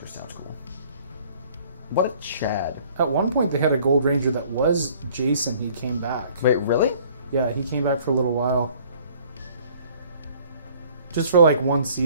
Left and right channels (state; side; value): inverted; both; correlation -0.55